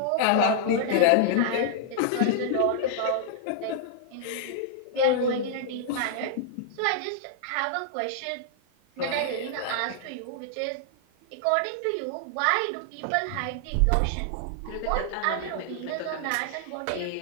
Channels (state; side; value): different; both; correlation -0.01